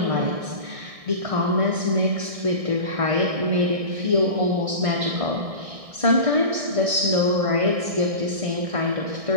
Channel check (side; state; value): left; late; 1.6 ms